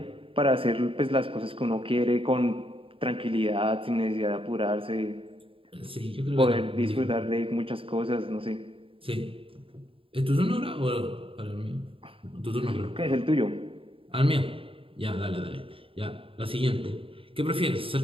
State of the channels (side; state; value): left; late; 0.26 ms